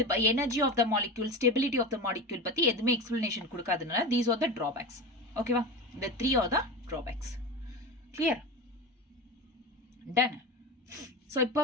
energy of the molecule, stability of the molecule பத்தி எதுவுமே explanation கொடுக்காதனால these are the drawbacks. ஓகேவா? The 3 are the drawbacks. Clear? Done. So இப்போ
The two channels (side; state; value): both; normal; correlation 0.25